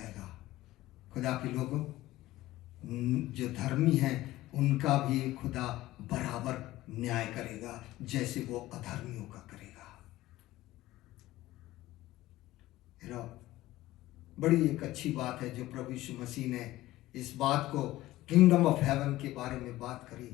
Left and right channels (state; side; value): quieter; right; 16.6 dB